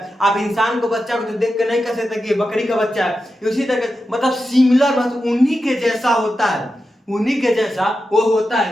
आप इंसान के बच्चा को तो देख कर नहीं कर सकते कि ये बकरी का बच्चा है। इसी तरह मतलब सिमिलर, मतलब उन्हीं के जैसा होता है, उन्हीं के जैसा वो होता है।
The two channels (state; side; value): normal; both; correlation 0.90